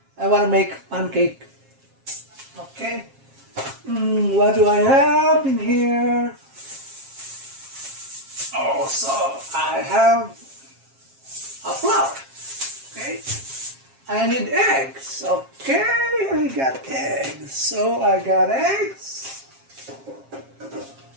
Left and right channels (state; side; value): late; left; 7.4 ms